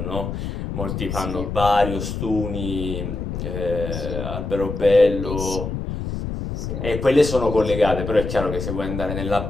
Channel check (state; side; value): noise; left; rumble, 5 dB below the sound